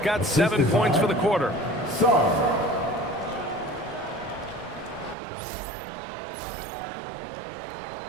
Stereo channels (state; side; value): drops out; left; at 5.2 s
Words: got 7 points for the quarter.